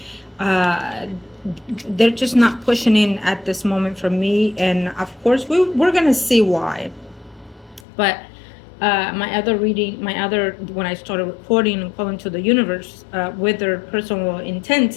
uh, they're just not pushing in at this moment for me, and of course we're gonna see why. But when I started recording and calling to the universe with their personal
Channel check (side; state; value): right; drops out; at 7.9 s